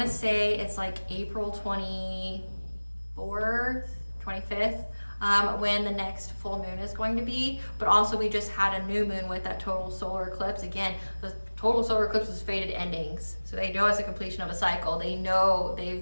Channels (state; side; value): inverted; both; correlation -1.00